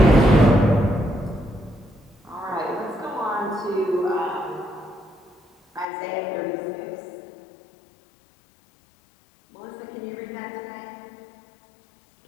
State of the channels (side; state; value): right; drops out; at 5.9 s